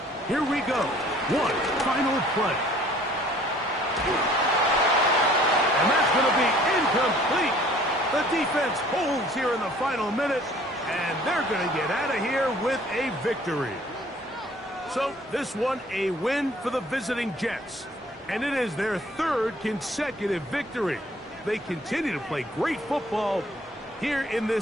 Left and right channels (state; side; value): normal; both; correlation 0.55